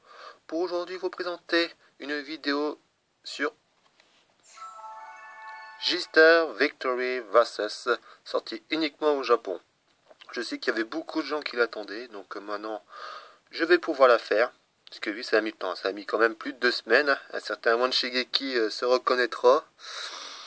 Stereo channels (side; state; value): both; identical; correlation 1.00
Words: pour aujourd'hui vous présenter une vidéo sur J-Star Victory Versus, sortie uniquement au Japon. Je sais qu'il y avait beaucoup de gens qui l'attendaient, donc maintenant je vais pouvoir la faire, parce que oui, ça a mis le temps, ça a mis quand même plus de 2 semaines, un certain Wan Shigeki se reconnaîtra.